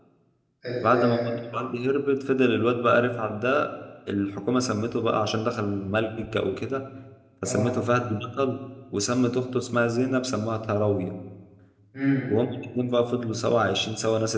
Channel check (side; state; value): both; identical; correlation 1.00